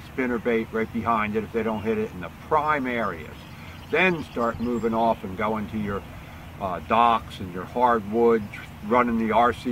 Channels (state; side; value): identical; both; correlation 1.00